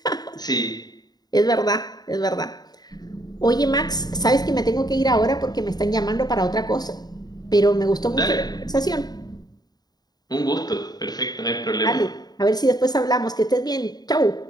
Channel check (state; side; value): late; right; 0.19 ms